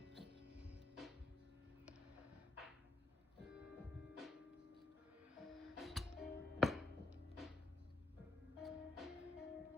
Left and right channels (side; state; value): right; quieter; 3.2 dB